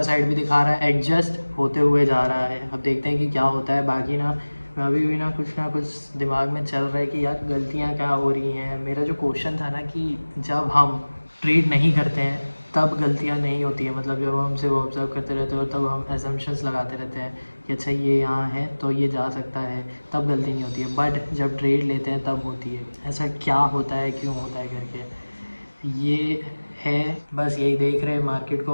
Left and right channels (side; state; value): both; inverted; correlation -1.00